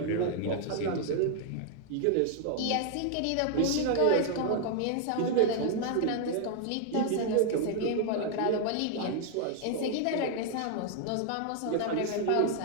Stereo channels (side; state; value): both; different; correlation 0.00